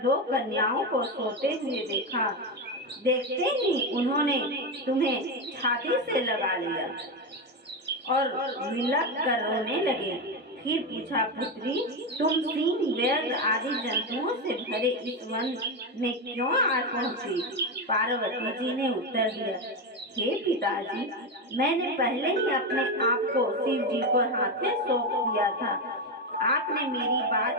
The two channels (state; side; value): normal; both; correlation 0.12